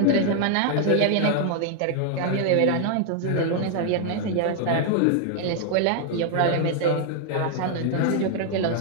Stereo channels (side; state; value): both; different; correlation 0.00